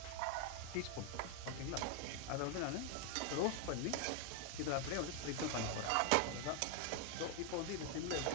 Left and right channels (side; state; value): both; different; correlation 0.00